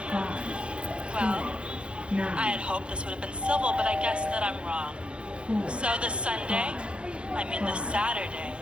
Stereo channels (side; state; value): left; late; 0.058 ms